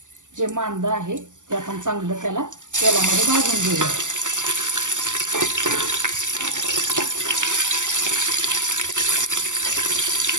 जे मांदा आहे ते आपण चांगलं त्याला तेलामध्ये भाजून घेऊया.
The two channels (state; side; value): late; left; 0.87 ms